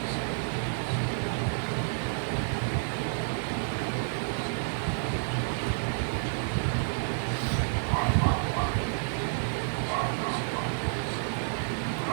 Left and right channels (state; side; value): silent; left; digital silence